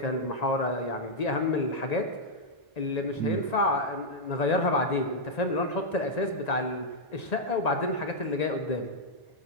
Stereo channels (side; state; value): right; late; 1.9 ms